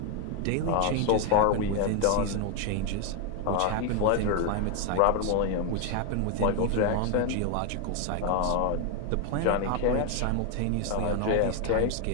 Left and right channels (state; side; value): different; both; correlation 0.01